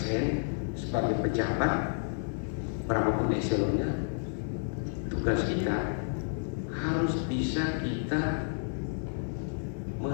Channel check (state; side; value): silent; right; 57 dB below the other